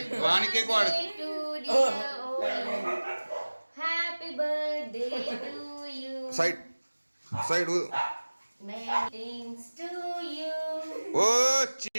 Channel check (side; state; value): both; inverted; correlation -1.00